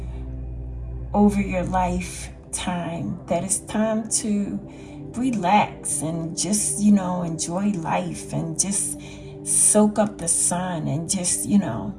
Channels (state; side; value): identical; both; correlation 1.00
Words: over your lifetime that it's time to relax and just, enjoy life and just soak up the sun and just